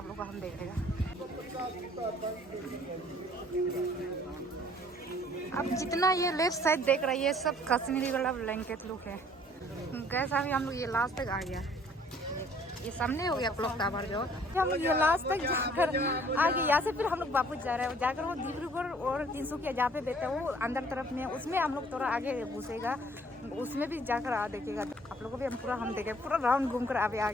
लोग को हम देखेगा। अब जितना ये लेफ्ट साइड देख रहा है, ये सब कश्मीरी वाला ब्लैंकेट लुक है। गैस अभी हम लोग ये लास्ट तक आ गया। ये सामने हो गया क्लॉक टावर जो। हम ये लास्ट तक जाकर आगे, यहाँ से फिर हम लोग वापस जा रहे हैं। जाकर वो डिब्रूगढ़ और 300 जहाँ पे बैठा है वो अंदर तरफ में, उसमें हम लोग थोड़ा आगे घुसेगा, उसमें भी जाकर देखेगा। आप लोगों को भी हम पूरा हम देखेगा, पूरा राउंड घूम कर अभी आ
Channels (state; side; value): normal; both; correlation 0.57